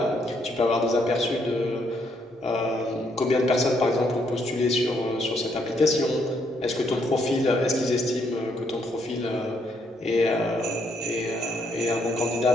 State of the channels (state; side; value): normal; both; correlation 0.73